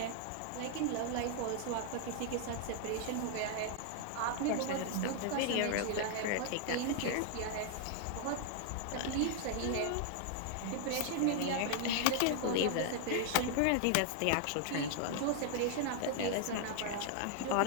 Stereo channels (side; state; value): both; different; correlation 0.00